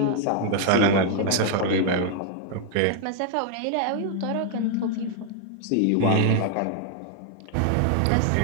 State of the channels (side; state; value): both; different; correlation 0.00